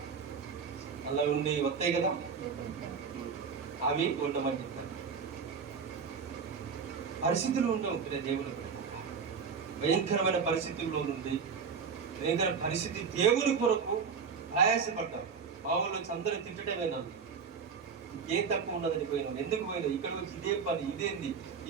అలా ఉండి వస్తాయి కదా, అవి ఉండమని చెప్తాను. పరిస్థితులు ఉండవు దేవుని భయంకరమైన పరిస్థితుల్లో నుండి భయంకర పరిస్థితి. దేవుని కొరకు ప్రయాసపడ్డాం. మా ఊళ్ళో అందరూ తిట్టడమే నన్ను, ఏం తక్కువ ఉన్నదని పోయినావు, ఎందుకు పోయినావు, ఇక్కడ వచ్చి ఇదే పని, ఇదేంది,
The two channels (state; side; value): quieter; left; 6.0 dB